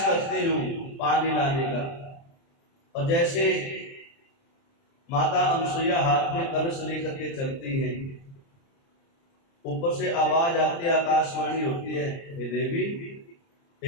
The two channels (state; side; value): late; right; 30 ms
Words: करती हूँ पानी लाने का। और जैसे माता अनसुईया हाथ में कलश लेकर के चलती हैं, ऊपर से आवाज आती है, आकाशवाणी होती है, हे देवी,